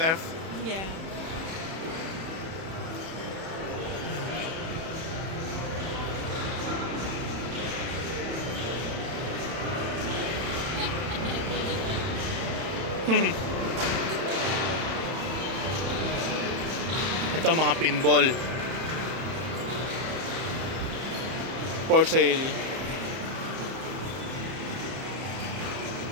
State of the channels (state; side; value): late; left; 31 ms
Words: Yeah. Ito mga pinball for sale.